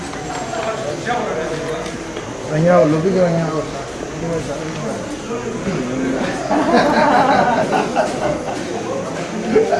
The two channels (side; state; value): left; noise; hum, 26 dB below the sound